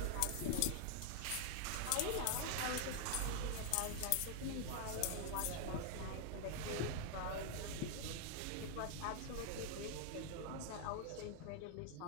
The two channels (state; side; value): different; both; correlation 0.00